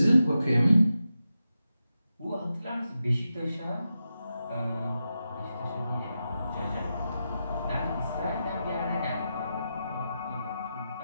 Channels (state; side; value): inverted; both; correlation -0.89